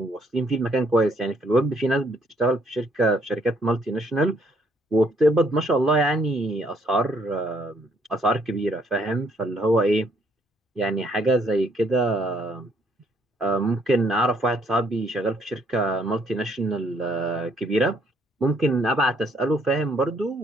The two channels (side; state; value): both; normal; correlation 0.67